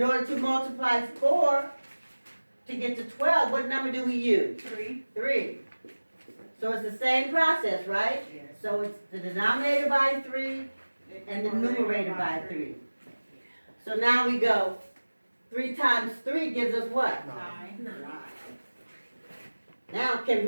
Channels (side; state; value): both; inverted; correlation -1.00